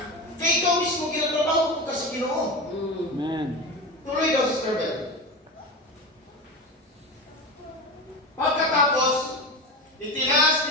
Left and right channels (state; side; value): normal; both; correlation 0.24